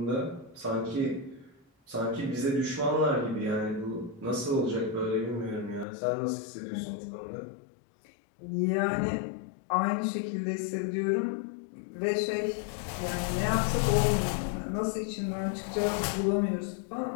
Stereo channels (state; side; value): drops out; right; at 5.9 s